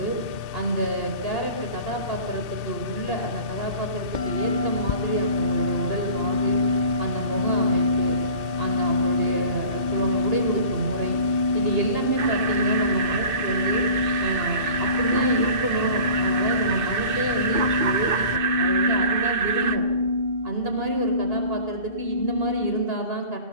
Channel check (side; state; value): left; late; 2.6 ms